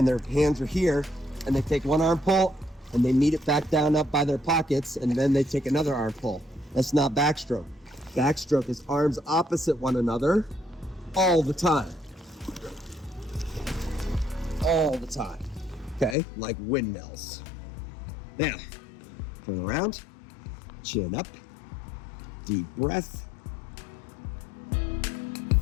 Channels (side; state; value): right; drops out; at 16.2 s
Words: their hands are here, and they take one arm pull, and they meet it back down up by their pockets, and then they take another arm pull. That's not backstroke. Backstroke is arms opposite one another all the time. All the time. Okay, like windmills. Now, turn around, chin up, deep breath,